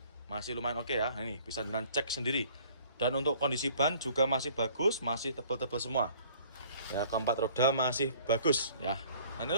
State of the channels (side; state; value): both; inverted; correlation -0.54